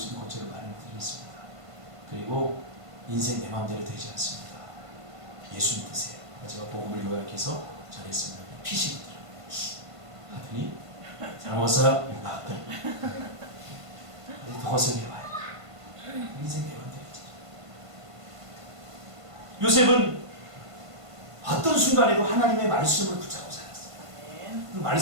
있는 곳을 마련해 드리겠습니다. 그리고 인생 내 마음대로 되지 않습니다. 예수 믿으세요. 제가 복음을 요약해서 전했습니다. 피시더라고요. 하더니 잘 먹었어요? 나왔더니 더 고생해봐요. 인생 내 마음대로 되지. 요셉은 어떤 순간에도 하나님의 말씀을 붙잡고 살았어요. 그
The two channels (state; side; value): late; left; 1.5 ms